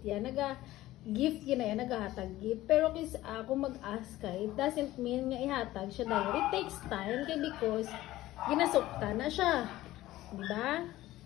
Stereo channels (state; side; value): quieter; right; 16.1 dB